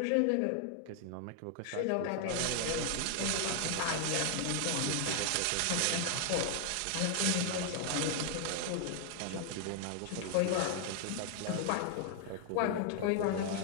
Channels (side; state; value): both; different; correlation 0.00